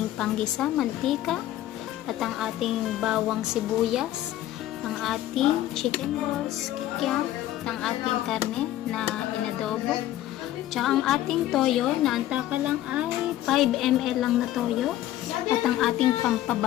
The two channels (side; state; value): right; quieter; 13.8 dB